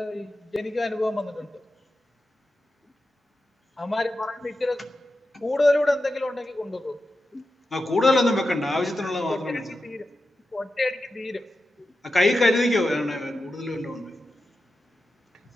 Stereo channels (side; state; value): both; normal; correlation 0.91